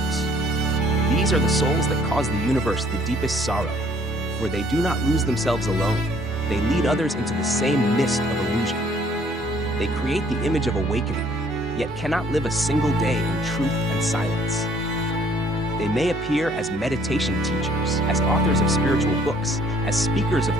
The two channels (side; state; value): both; normal; correlation 0.61